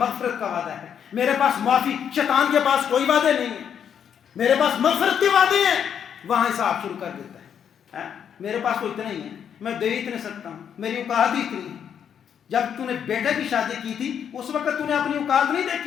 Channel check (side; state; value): right; quieter; 8.3 dB